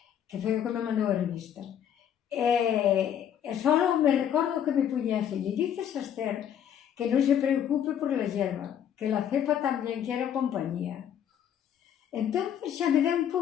que foi o que me mandou a revista. E só me recordo que me puña así, le dices a Esther que non se preocupe por la hierba, que la cepa tamén quiere compañía. Entón xa me deu un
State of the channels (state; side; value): quieter; right; 9.4 dB